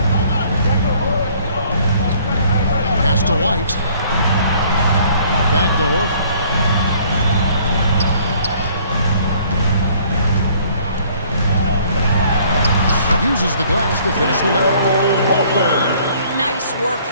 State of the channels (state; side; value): inverted; both; correlation -0.58